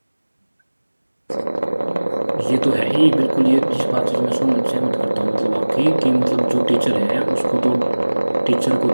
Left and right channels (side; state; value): both; inverted; correlation -1.00